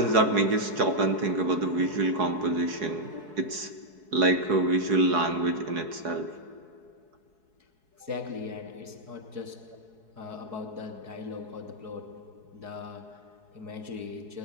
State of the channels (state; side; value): late; left; 4.7 ms